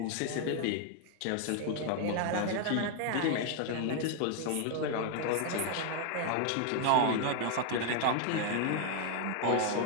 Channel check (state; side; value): different; both; correlation 0.00